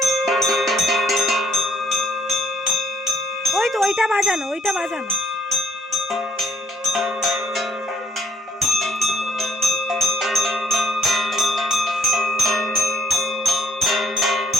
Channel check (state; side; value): normal; both; correlation 0.65